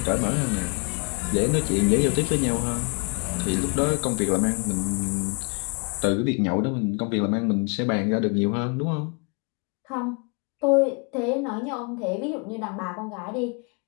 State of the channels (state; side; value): quieter; right; 34.8 dB